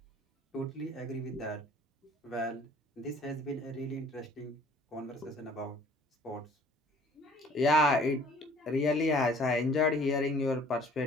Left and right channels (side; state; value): both; normal; correlation 0.54